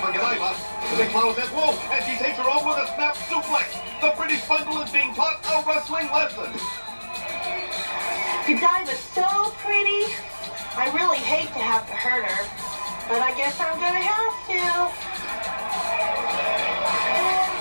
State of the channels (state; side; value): inverted; both; correlation -1.00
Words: Godiva. The big flower says, whoa! And she takes her over with a snap suplex. The British bundle is being taught a wrestling lesson. Godiva's so pretty. I really hate to have to hurt her, but I guess I'm gonna have to.